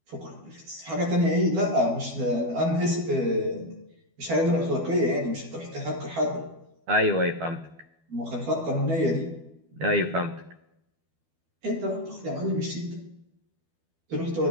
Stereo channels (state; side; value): late; left; 12 ms